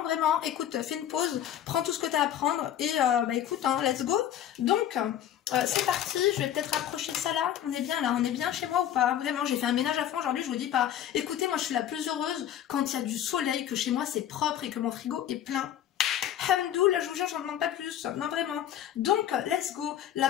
vraiment? Écoute, fais une pause, prends tout ce que t'as à prendre et bah écoute, hein, let's go. Donc, c'est parti, je vais peut-être rapprocher ça là. On est bien là, on est bien chez moi ou pas? Vraiment, j'ai fait un ménage à fond aujourd'hui, je vous dis pas. Écoutez, moi je suis la plus heureuse quand il y a du soleil, que chez moi c'est propre et que mon frigo est plein. Hamdou, là je vous jure, j'en demande pas plus, non vraiment. Donc, let's go.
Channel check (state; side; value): quieter; right; 10.8 dB